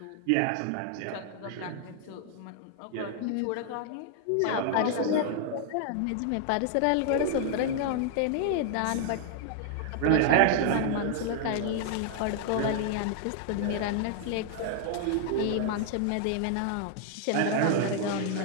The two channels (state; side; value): different; both; correlation 0.00